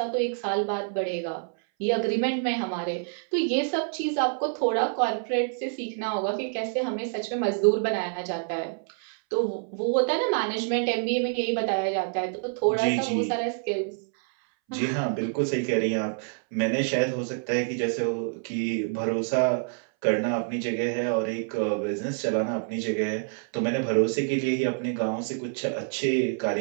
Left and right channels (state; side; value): silent; left; 60 dB below the other